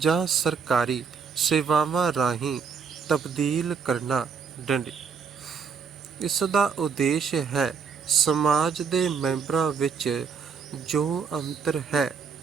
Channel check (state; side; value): quieter; left; 5.9 dB